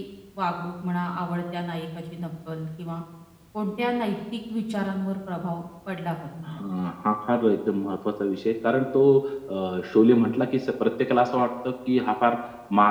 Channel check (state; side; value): identical; both; correlation 1.00